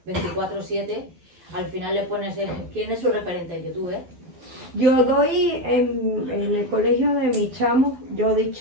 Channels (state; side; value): late; left; 12 ms